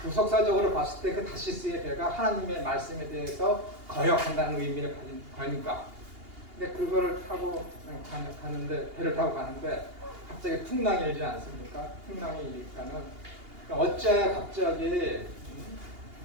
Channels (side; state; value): left; late; 2.8 ms